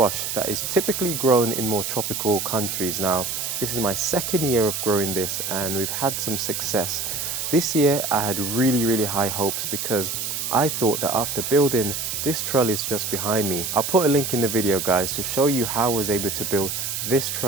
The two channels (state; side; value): noise; right; hiss, 3 dB below the sound